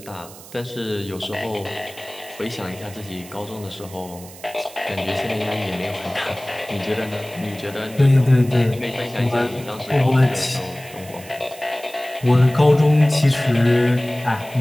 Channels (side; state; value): right; noise; hiss, 18 dB below the sound